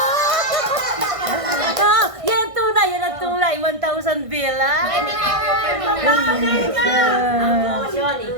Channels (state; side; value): late; left; 1.6 ms